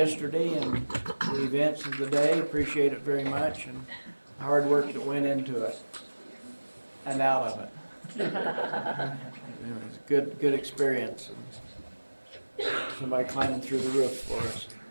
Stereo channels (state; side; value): inverted; both; correlation -1.00